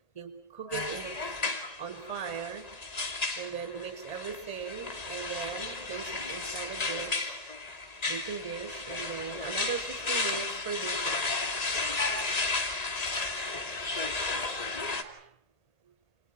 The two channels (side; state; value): right; late; 1.9 ms